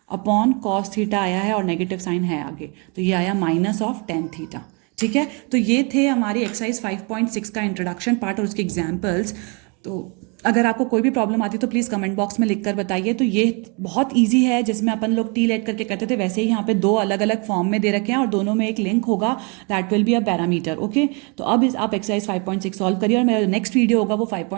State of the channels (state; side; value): quieter; left; 32.9 dB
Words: upon cos theta आया है और नेगेटिव साइन है आगे, तो ये आया -tan थीटा। ठीक है, तो ये थे हमारी एक्सरसाइज 5.6 का इंट्रोडक्शन पार्ट और उसके एग्जाम्पल्स। तो अगर आपको कोई भी प्रॉब्लम आती है तो प्लीज़ कमेंट बॉक्स में लिख कर बताइए। तो ये बहुत इजी है, जिसमें अपन लोग टी लेट करके करते थे वैसे ही यहाँ पे 2 अलग अलग फॉर्म में दे रखे हैं और दोनों में एक लिंक होगा, that will be a parameter. Okay, तो अब आप एक्सरसाइज 5.6 सॉल्व करिए और मेरा नेक्स्ट वीडियो होगा वो